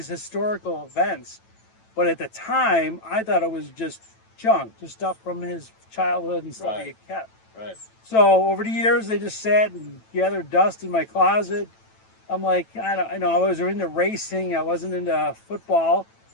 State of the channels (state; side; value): late; right; 9.0 ms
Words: historical events. But at the time, I thought it was just junk, just stuff from his childhood and stuff he kept. Right. So over the years, they just sat and gathered dust in my closet. I'm like, I was into racing. I wasn't into football.